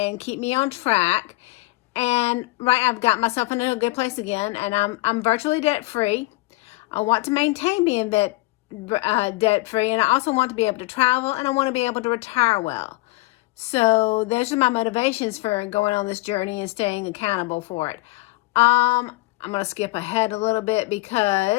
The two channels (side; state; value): right; quieter; 21.4 dB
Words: keep me on track. And I've got myself in a good place again, and I'm virtually debt free. I want to maintain being debt free, and I also want to be able to travel, and I want to be able to retire well. So those are my motivations for going on this journey and staying accountable for it. I'm going to skip ahead a little bit